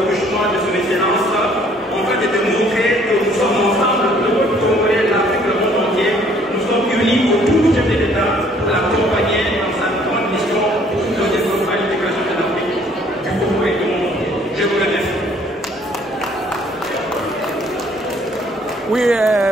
couchement de son excellence, en fait de démontrer que nous sommes ensemble, le peuple congolais, l'Afrique, le monde entier, nous sommes unis autour du chef de l'État pour l'accompagner dans sa grande mission de développement et l'intégration de l'Afrique, du Congo et du monde entier. Je vous remercie. Oui,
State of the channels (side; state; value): both; normal; correlation 0.60